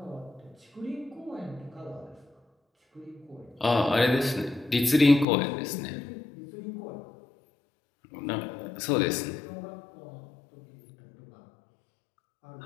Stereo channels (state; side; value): drops out; right; at 5.2 s